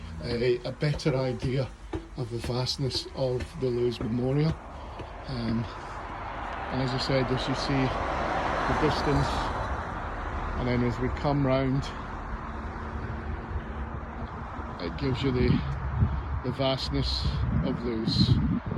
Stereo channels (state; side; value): identical; both; correlation 1.00